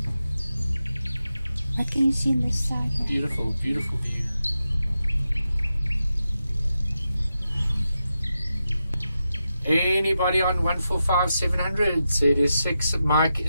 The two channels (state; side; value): inverted; both; correlation -0.89